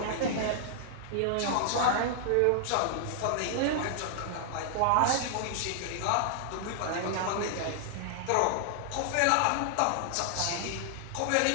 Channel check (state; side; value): different; both; correlation -0.01